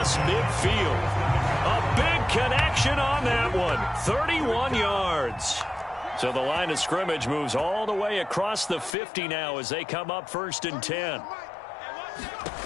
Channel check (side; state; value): right; drops out; at 9.0 s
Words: midfield. A big connection on that one. 31 yards. So the line of scrimmage moves all the way across the 50 now as they come up first and 10.